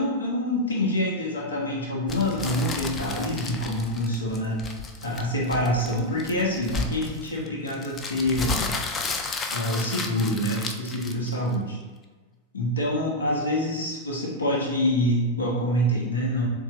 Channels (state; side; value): normal; both; correlation -0.02